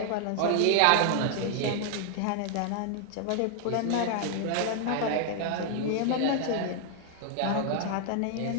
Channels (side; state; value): both; different; correlation 0.00